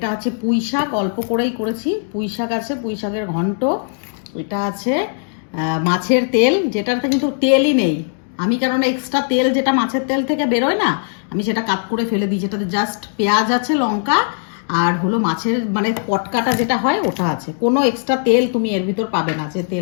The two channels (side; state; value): right; silent; digital silence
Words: আছে পুঁই শাক, অল্প করেই করেছি, পুঁই শাক আছে, পুঁই শাকের ঘন্ট। এটা আছে মাছের তেল, যেটাতে কিন্তু তেলই নেই। আমি কেননা এক্সট্রা তেল যেটা মাছের তেল থেকে বেরোয় না, আমি সেটা কাট করে ফেলে দিই, যেটাতে জাস্ট পেঁয়াজ আছে, লঙ্কা আর হলো মাছের মানে পটকাটা যেটা হয় ওটা আছে, কোনো এক্সট্রা তেল তুমি এর ভিতর পাবে না যে